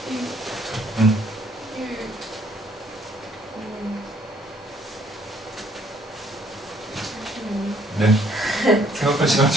네. 생각할 시간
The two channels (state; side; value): normal; both; correlation 0.64